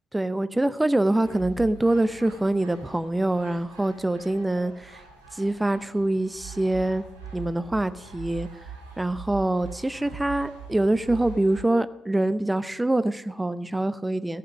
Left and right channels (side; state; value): both; normal; correlation 0.98